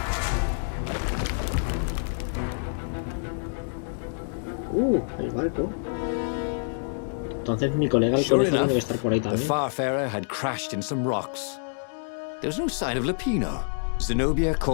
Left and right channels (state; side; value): silent; right; digital silence